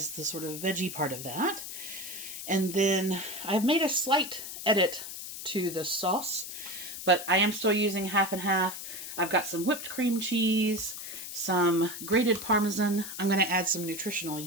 the sort of veggie part of that. And then I've made a slight edit to the sauce, but I am still using half and half. I've got some whipped cream cheese, some grated Parmesan. I'm going to add some nutritional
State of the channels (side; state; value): left; noise; hiss, 9 dB below the sound